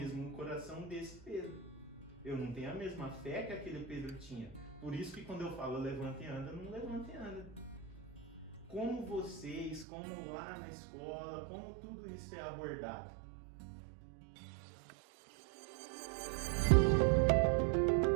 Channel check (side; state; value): left; drops out; at 9.9 s